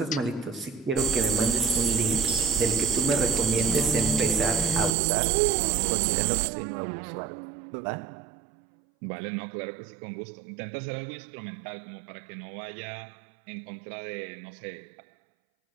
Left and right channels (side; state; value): left; drops out; at 5.0 s